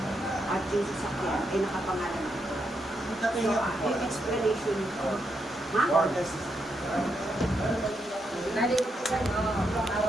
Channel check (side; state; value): both; normal; correlation 0.81